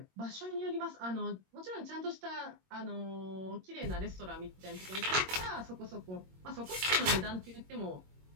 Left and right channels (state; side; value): late; left; 22 ms